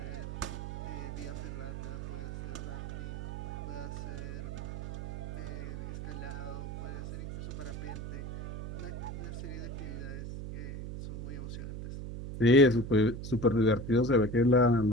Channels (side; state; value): right; noise; hum, 6 dB below the sound